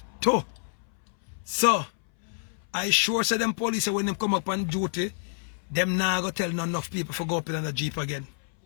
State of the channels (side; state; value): right; silent; 60 dB below the other